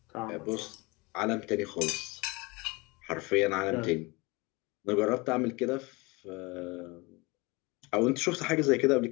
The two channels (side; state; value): right; quieter; 25.3 dB